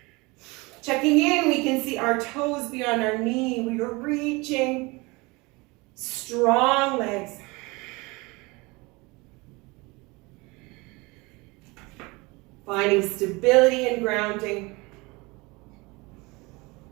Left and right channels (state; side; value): quieter; left; 25.0 dB